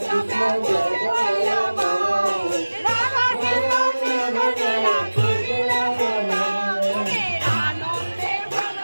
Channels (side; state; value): both; inverted; correlation -1.00